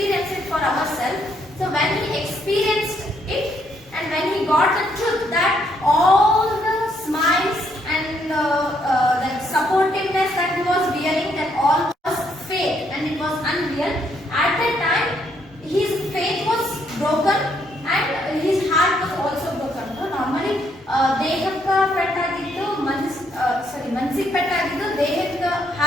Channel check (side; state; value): both; normal; correlation 0.72